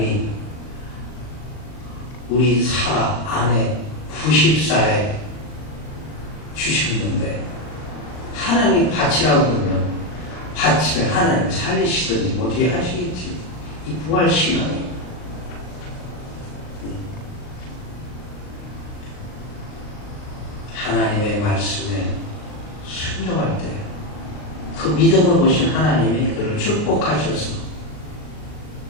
우리 사라 아내 90살에 주셨는데 하나님이 바치라고 그러면 바치면 하나님 살리시든지 뭐 어떻게 하시겠지. 이 부활신앙이 하나님의 말씀에 순종할 때 그 믿음을 보신 하나님이 그를 축복하셔서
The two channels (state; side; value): late; right; 38 ms